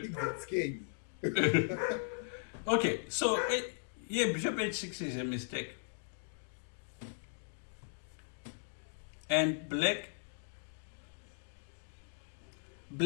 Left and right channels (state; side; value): silent; right; digital silence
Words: that scare you. Okay, so Bishop H6 is a mistake. And black